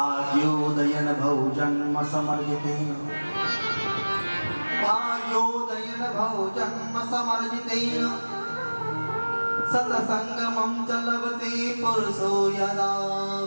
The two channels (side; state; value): both; inverted; correlation -1.00